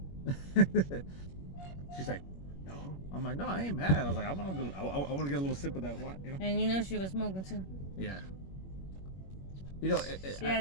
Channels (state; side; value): late; right; 21 ms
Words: She's like, no. I'm like, no, I ain't mad. I was like, I want to get a little sip of that wine, you know. And you know she was smoking too. Yeah. You know, she